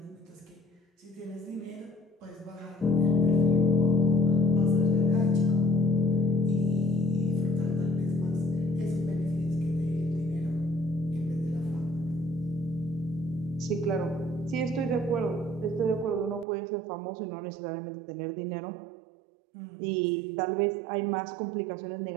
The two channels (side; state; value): left; drops out; at 16.4 s